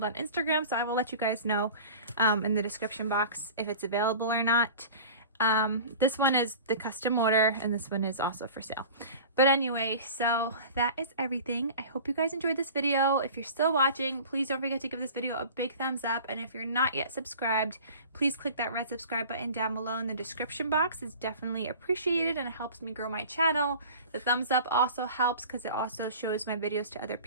on Instagram. So I will let you guys know in the description box if it's available or not. This one is the custom order, and this one is also for sale. But anyway, so that is everything. I hope you guys enjoyed this video. If you're still watching, please don't forget to give this video a big thumbs up. And if you're not yet subscribed, please click that red subscribe button down below in the description box. It's definitely appreciated and it helps me grow my channel. The thumbs up also helps because it also shows my videos to other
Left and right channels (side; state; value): both; inverted; correlation -0.40